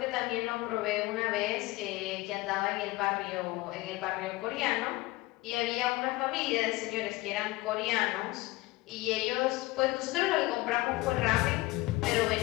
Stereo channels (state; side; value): quieter; right; 20.3 dB